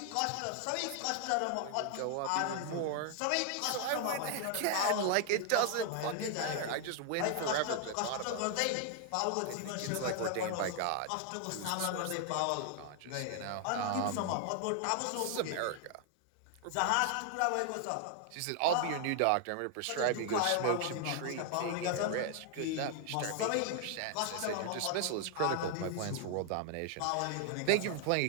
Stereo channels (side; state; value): both; different; correlation 0.00